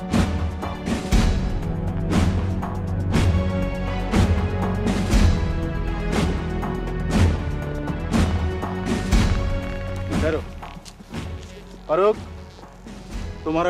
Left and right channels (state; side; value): identical; both; correlation 1.00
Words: ठहरो फारूक तुम्हारा